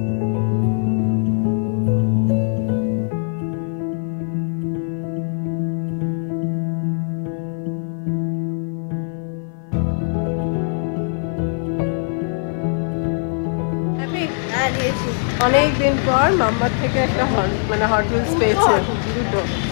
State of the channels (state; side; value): silent; right; 58 dB below the other